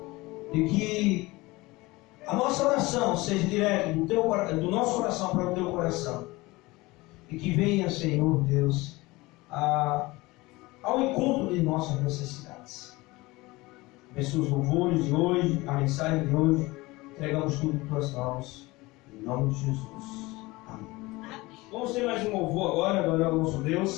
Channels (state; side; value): quieter; right; 21.5 dB